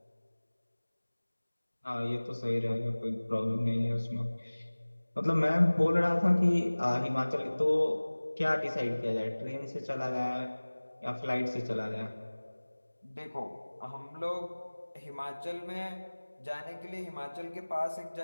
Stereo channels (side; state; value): both; inverted; correlation -1.00